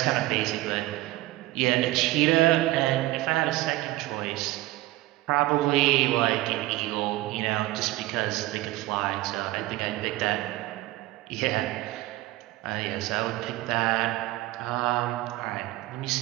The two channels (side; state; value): left; quieter; 17.7 dB